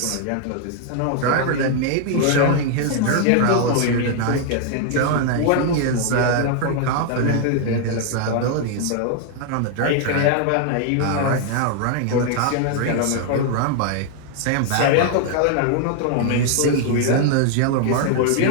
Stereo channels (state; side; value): different; both; correlation 0.00